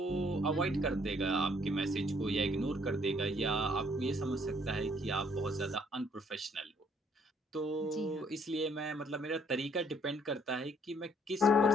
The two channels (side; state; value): both; normal; correlation 0.65